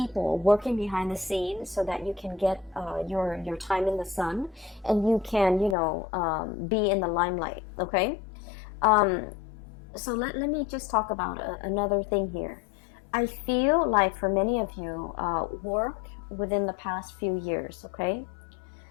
working behind the scenes, so that you can get your time in the sun, and you can, you know, be in the limelight. Okay, so let me just talk about another thing here. I feel like for many of you, work within the past few years, okay,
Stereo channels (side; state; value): right; drops out; at 5.8 s